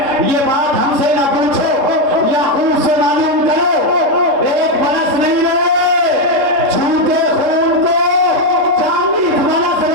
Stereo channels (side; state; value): left; late; 3.7 ms